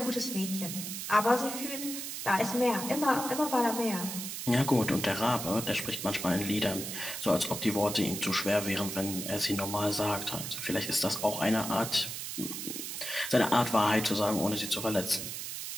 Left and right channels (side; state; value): right; noise; hiss, 6 dB below the sound